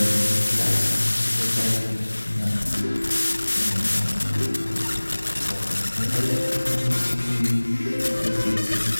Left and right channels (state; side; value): inverted; both; correlation -1.00